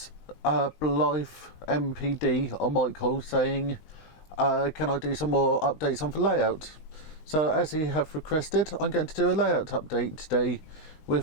MPD on Michael saying can I do some more updates on the layout. So as he have requested, I'm going to do a layout update today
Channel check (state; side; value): late; right; 19 ms